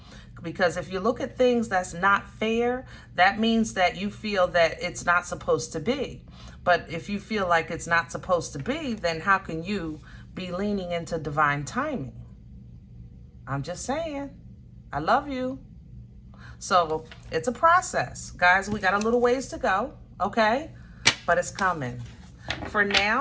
Because if you look at things that's not fair, that means that you feel that it's not supposed to be. But if you feel like it's not supposed to be, then how can you be leaning into divine timing? I'm just saying. I love you. So it's a process. Guys, we got a little ways to go, okay? But it's coming. For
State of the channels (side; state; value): both; identical; correlation 1.00